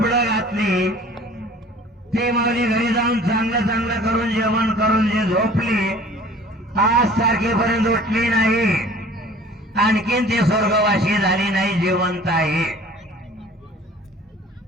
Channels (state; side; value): normal; both; correlation 0.48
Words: घातली. ती माऊली घरी जाऊन चांगलं करून जेवण करून जे झोपली, आज तारखेपर्यंत उठली नाही, आणखीन ती स्वर्गवासी झाली नाही, जिवंत आहे.